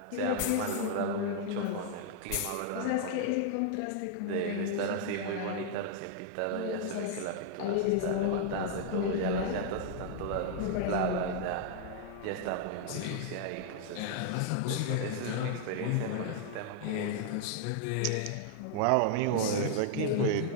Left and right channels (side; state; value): both; different; correlation -0.01